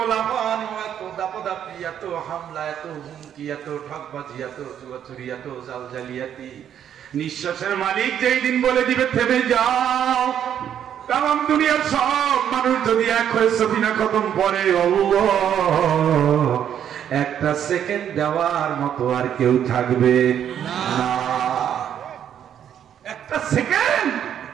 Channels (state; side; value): quieter; left; 9.5 dB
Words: লাফান, এত দাপাদাপি, এত হামলা, এত হুমকি, এত ঠকবাজি, এত চুয়াচুরি, এত জালজালিয়াতি। নিঃশ্বাসের মালিক যেই দিন বলে দিবে থেমে যাও, তাম দুনিয়ার সব মানুষ যদি এক হয়ে সফিনা খতম করে, একটা সেকেন্ড দেওয়ার মতো আর কেউ থাকবে না। একটা সেকেন্ড